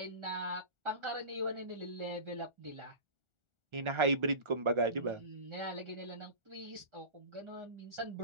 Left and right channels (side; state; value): left; late; 1.4 ms